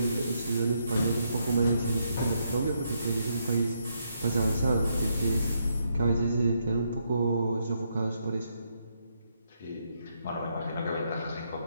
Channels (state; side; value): inverted; both; correlation -0.78